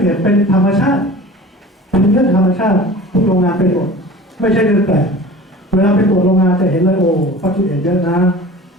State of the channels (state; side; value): normal; both; correlation 0.40